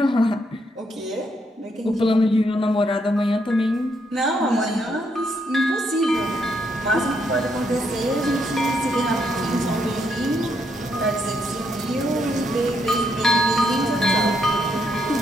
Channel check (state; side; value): normal; both; correlation 0.76